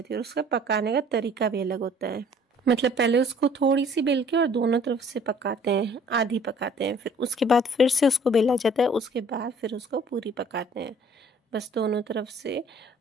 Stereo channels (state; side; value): normal; both; correlation 0.55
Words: है और उसका पकाने का तरीका भी अलग होता है। मतलब पहले उसको थोड़ी सी बेल के और दोनों तरफ से पकाते हैं, आधी पकाते हैं, फिर उसके बाद फिर से उसको बेला जाता है, उसके बाद फिर उसको पूरी पकाते हैं। बस दोनों तरफ से